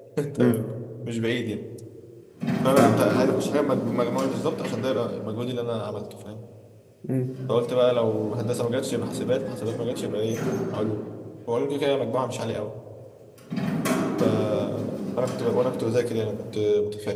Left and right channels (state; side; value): identical; both; correlation 1.00